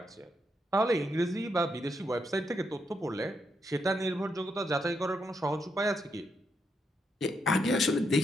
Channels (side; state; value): both; normal; correlation 0.79